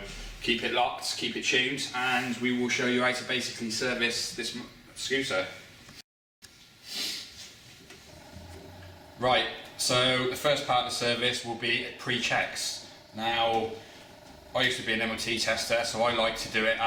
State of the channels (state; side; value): identical; both; correlation 1.00